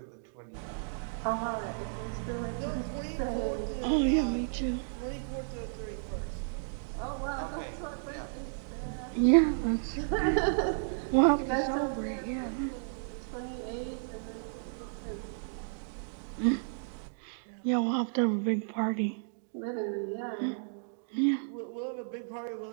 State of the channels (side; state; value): left; silent; digital silence